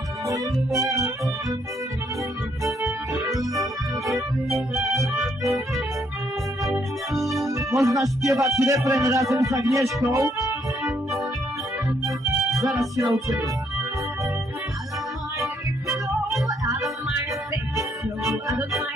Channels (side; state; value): both; normal; correlation 0.71